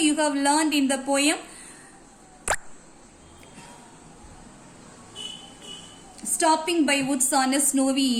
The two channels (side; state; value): both; identical; correlation 1.00